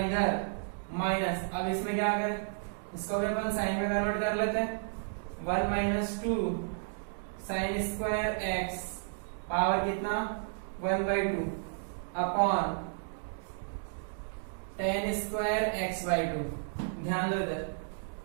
इधर माइनस, अब इसमें क्या करें, इसको भी अपन साइन में कन्वर्ट कर लेते हैं, 1 minus 2 sign square x power कितना 1/2 अपॉन tan स्क्वायर x/2। ध्यान दो इधर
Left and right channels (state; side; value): silent; left; digital silence